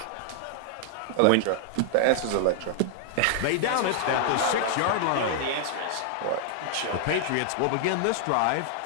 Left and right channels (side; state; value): both; different; correlation -0.01